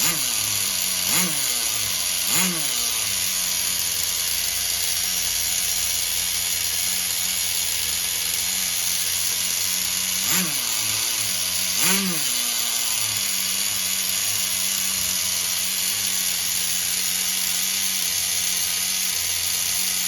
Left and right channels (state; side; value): identical; both; correlation 1.00